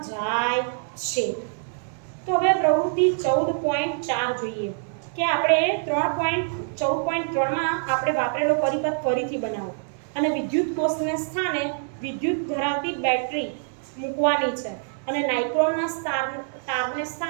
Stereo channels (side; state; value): left; silent; digital silence